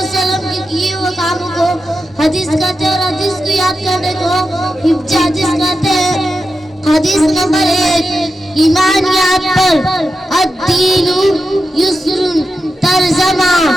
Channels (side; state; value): both; normal; correlation 0.90